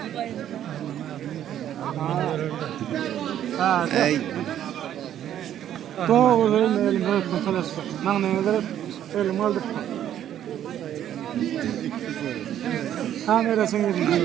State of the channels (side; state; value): left; quieter; 10.9 dB